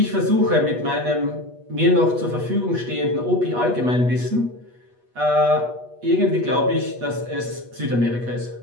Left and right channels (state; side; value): late; left; 8.3 ms